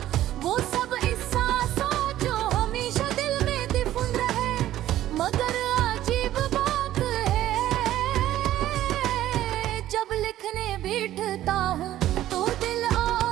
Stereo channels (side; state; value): left; quieter; 13.4 dB